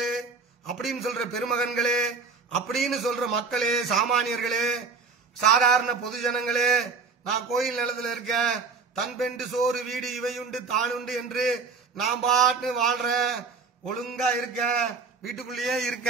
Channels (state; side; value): quieter; left; 4.8 dB